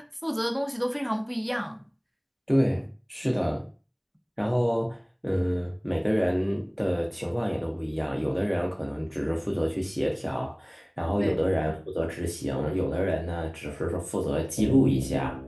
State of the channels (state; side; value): identical; both; correlation 1.00